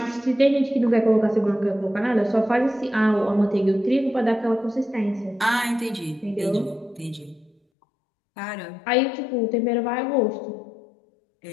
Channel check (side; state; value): right; drops out; at 7.6 s